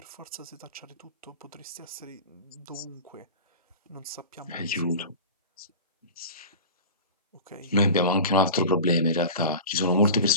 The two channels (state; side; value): inverted; both; correlation -0.32